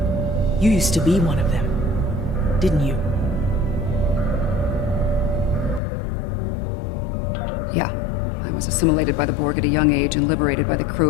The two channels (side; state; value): right; drops out; at 5.8 s